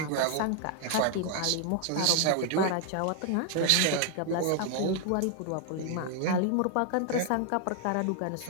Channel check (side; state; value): both; different; correlation 0.00